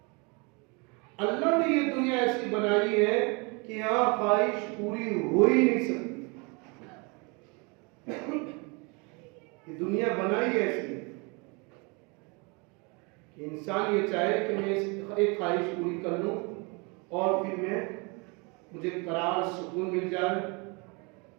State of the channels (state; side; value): quieter; left; 30.3 dB